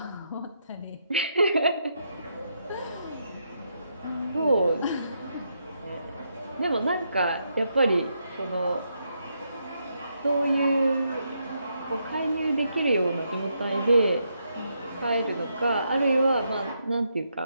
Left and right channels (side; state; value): both; inverted; correlation -0.79